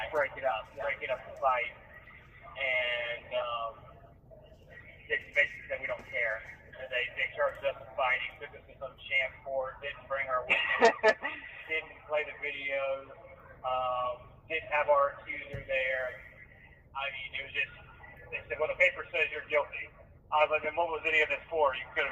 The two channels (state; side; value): identical; both; correlation 1.00